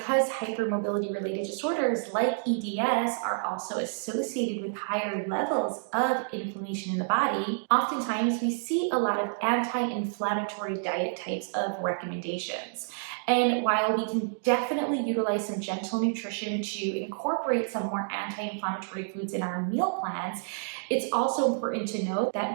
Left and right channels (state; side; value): silent; left; digital silence